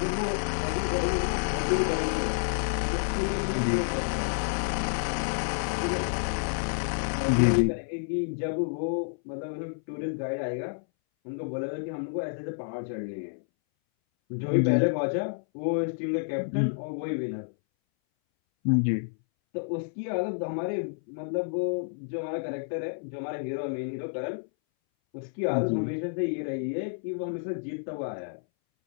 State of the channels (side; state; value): right; silent; 58 dB below the other